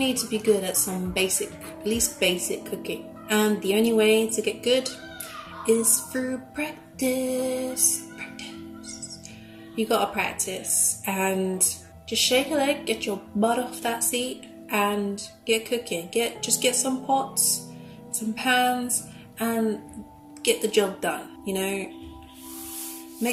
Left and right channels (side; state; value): both; identical; correlation 1.00